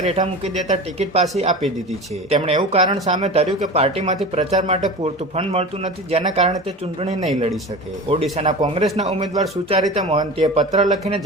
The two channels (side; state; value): both; normal; correlation 0.32